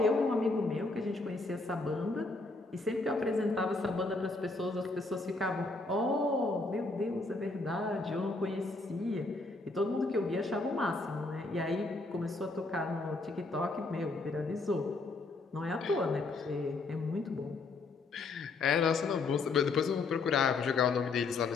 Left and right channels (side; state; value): right; quieter; 3.5 dB